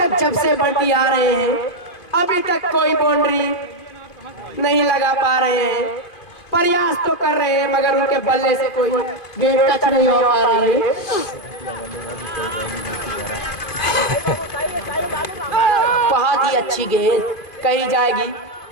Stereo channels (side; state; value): right; late; 2.5 ms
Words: जब से बंटी आ रहे हैं, अभी तक कोई बाउंड्री नहीं लगा पा रहे हैं। प्रयास तो कर रहे हैं मगर उनके बल्ले से कोई गेंद टच नहीं हो पा रही है। बहुत ही अच्छी गेंद कही जाएगी,